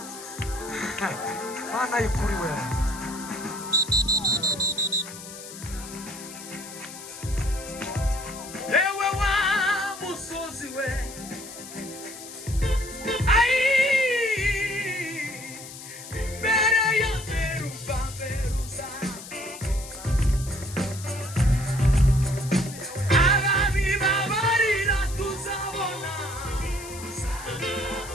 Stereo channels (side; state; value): left; noise; hiss, 13 dB below the sound